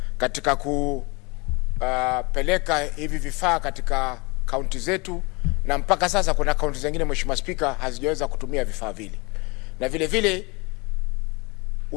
katika kupeleka hivi vifaa katika kaunti zetu, na mpaka sasa kuna kaunti zingine Mheshimiwa Spika hazijaweza kutumia vifaa vile. Na vile vile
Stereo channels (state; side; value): quieter; right; 27.3 dB